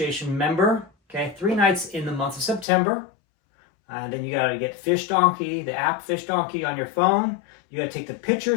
member, okay, 3 nights in the month of September. And then you got to get Fish Donkey, the app Fish Donkey on your phone. You got to take the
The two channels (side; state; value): right; drops out; at 2.7 s